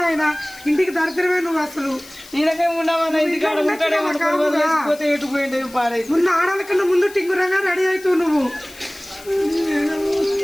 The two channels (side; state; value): left; noise; hiss, 20 dB below the sound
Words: ఆయన ఇంటికి దరిద్రమే నువ్వు అసలు. ఈయనకే ఉండవన్నా ఇంటికాడ ఉంటాడే ఎటుపోయింది పాడై. ముందు ఆడాల కన్నా ముందు టింగురంగా రెడీ అవుతావు నువ్వు.